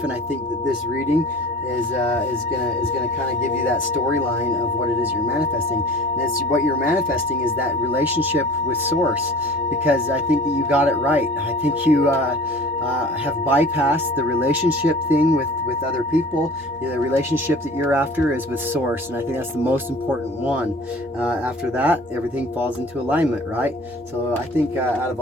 And I think that this reading is gonna kind of give you that storyline of what it is you're manifesting. And it's what you're manifesting is that relationship with source, because I think that you got it right. I think you have bypassed the relationship thing with other people. The relationship that you're after is with source, and I think that's the most important one. After that, everything falls into alignment, right? So I think out of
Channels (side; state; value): both; normal; correlation 0.44